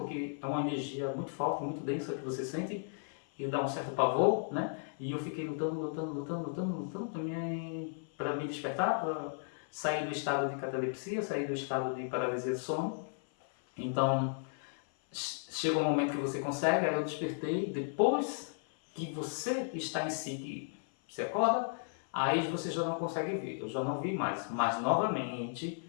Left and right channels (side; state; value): right; silent; 55 dB below the other